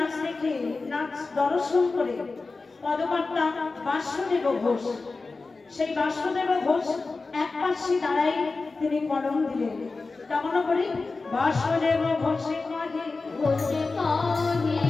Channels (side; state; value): right; quieter; 3.9 dB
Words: দেখে, নাচ দর্শন করে পদকর্তা বাসুদেব ঘোষ, সেই বাসুদেব ঘোষ এক পাশে দাঁড়াই তিনি কলম দিলেন। কেমন করি? বাসুদেব ঘোষে কাজে ঘোষে কাহে